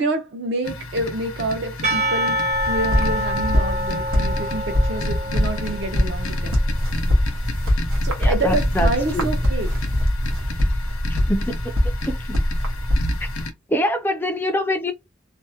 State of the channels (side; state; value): both; normal; correlation 0.62